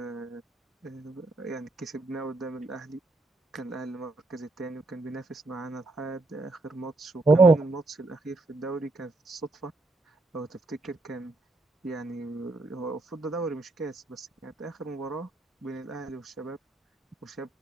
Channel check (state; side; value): quieter; left; 3.0 dB